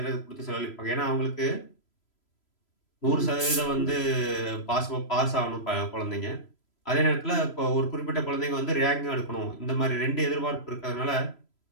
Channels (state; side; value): late; right; 3.0 ms